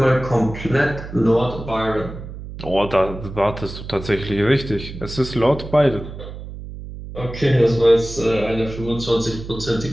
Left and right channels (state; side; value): noise; right; hum, 11 dB below the sound